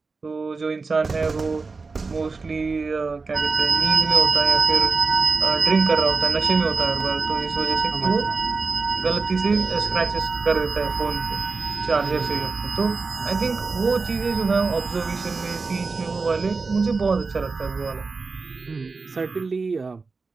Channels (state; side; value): quieter; left; 4.3 dB